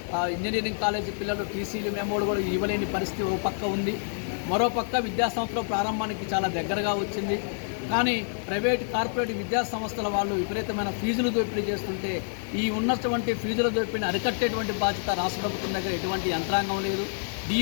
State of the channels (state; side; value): silent; right; 60 dB below the other